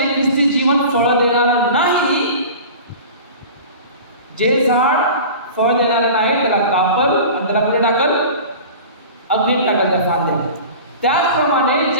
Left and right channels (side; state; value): both; inverted; correlation -0.37